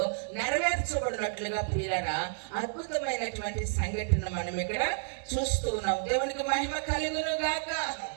నెరవేర్చబడినట్లుగా ప్రియులారా అద్భుతమైనటువంటి సంఘటన మనం ఇక్కడ చూస్తూ ఉన్నాం. దేవునికి మహిమ కలుగును గాక.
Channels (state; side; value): silent; left; 57 dB below the other